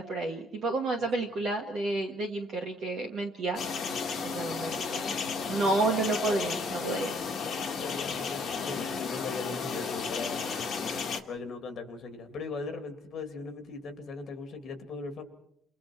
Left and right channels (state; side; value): normal; both; correlation 0.63